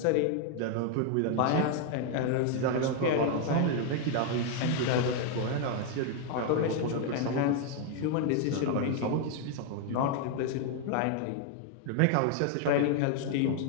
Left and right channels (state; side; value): different; both; correlation 0.00